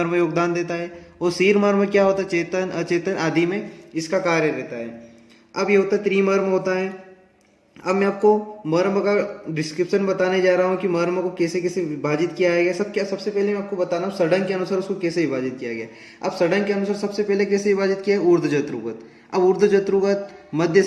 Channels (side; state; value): both; identical; correlation 1.00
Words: योगदान देता है। और सिर मर्म क्या होता है? चेतन अचेतन आदि में इसका कार्य रहता है। अब ये होता है त्रिमर्म होता है। अब मैं आपको मर्म का डिस्क्रिप्शन बताने जा रहा हूँ कि मर्म को कैसे कैसे विभाजित किया गया। सबसे पहले मैं आपको बताना हूँ षडंग के अनुसार उसको कैसे विभाजित किया गया। अब षडंग के अनुसार सबसे पहले कैसे विभाजित किया है? ऊर्ध्व जत्रुगत। अब ऊर्ध्व जत्रुगत, मध्य